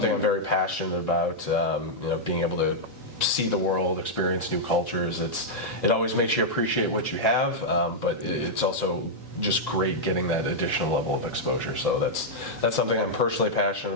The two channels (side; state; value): both; normal; correlation -0.06